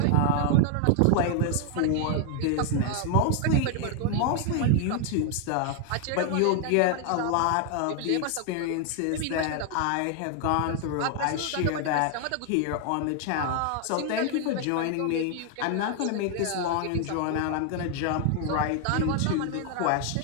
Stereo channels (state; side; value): different; both; correlation 0.00